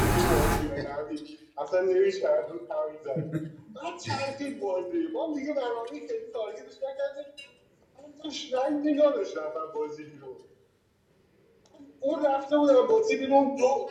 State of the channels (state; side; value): identical; both; correlation 1.00